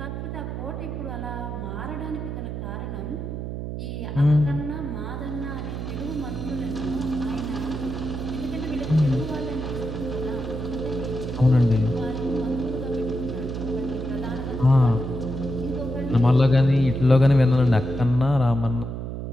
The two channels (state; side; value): noise; right; hum, 5 dB below the sound